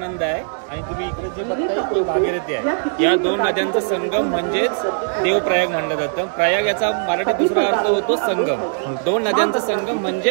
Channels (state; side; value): silent; left; digital silence